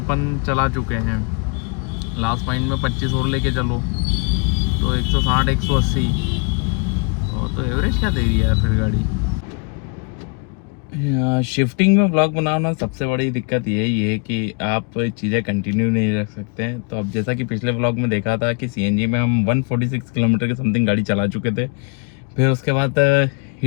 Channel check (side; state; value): right; quieter; 32.7 dB